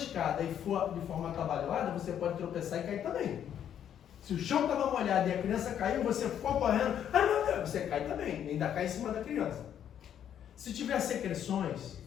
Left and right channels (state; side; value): quieter; right; 9.6 dB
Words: e for de forma atabalhoada, você pode tropeçar e cair também. Se o chão estava molhado e a criança caiu, você ficou correndo, ai meu Deus, você cai também, ainda cai em cima da criança. Se tiver secreções,